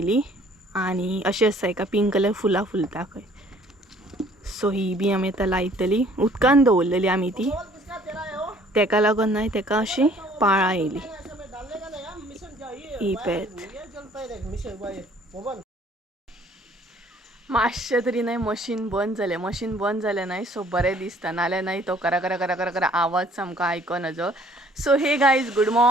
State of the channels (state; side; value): normal; both; correlation 0.57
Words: आनी अशें आसा एका पिंक कलर फुलां फुलता खंय. सो ही बी आमी आतां लायतली, उदकान दवरलेली आमी ती तेका लागून न्हय तेका अशी पाळां येयली. ही पळयात मातशें तरी न्हय मशीन बंद जालें न्हय सो बरें दिसता, नाल्यार न्हय तो करा करा करा करा करा आवाज सामको आयकनाजो. So hey guys good